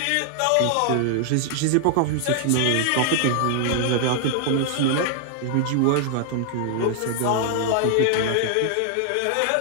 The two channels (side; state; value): both; different; correlation 0.00